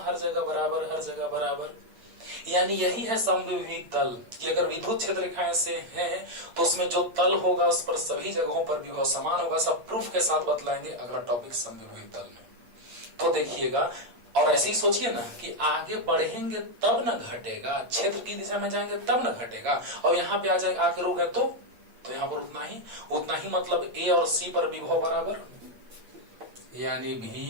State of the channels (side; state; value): left; late; 8.7 ms